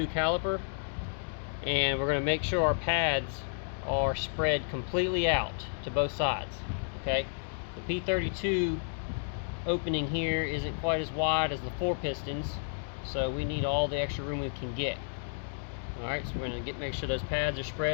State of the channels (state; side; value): silent; right; digital silence